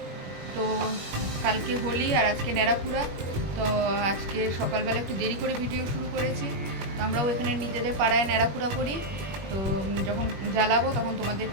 তো কালকে হোলি আর আজকে নেড়াপুরা। তো আজকে সকালবেলা একটু দেরি করে ভিডিও শুরু করেছি। তো আমরাও এখানে নিজেদের পাড়ায় নেড়াপুরা করি। তো যখন জ্বালাবো তখন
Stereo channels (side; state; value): left; late; 21 ms